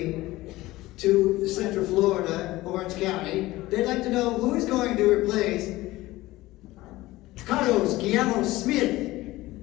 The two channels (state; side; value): quieter; right; 18.2 dB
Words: to Central Florida, Orange County, they'd like to know who is going to replace Carlos Guillermo Smith.